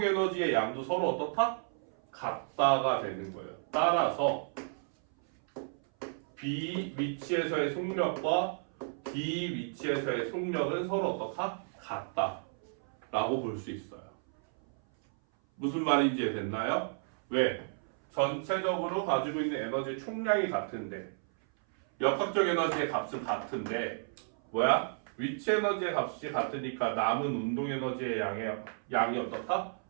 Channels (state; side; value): silent; left; 56 dB below the other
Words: 에너지의 양도 서로 어떻다? 같다가 되는 거예요. 따라서 B 위치에서의 속력과 D 위치에서의 속력은 서로 어떻다? 같다라고 볼 수 있어요. 무슨 말인지 됐나요? 왜? 전체적으로 가지고 있는 에너지 총량이 같은데 역학적 에너지의 값은 같은데 뭐야? 위치 에너지의 값이 같으니까 남은 운동 에너지의 양이 어떻다?